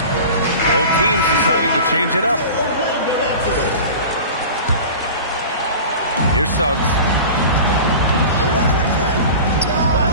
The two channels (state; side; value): inverted; both; correlation -0.36